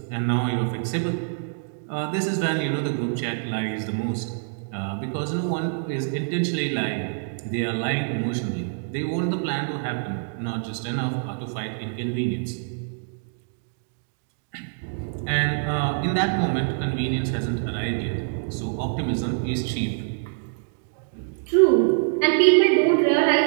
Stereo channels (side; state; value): left; silent; digital silence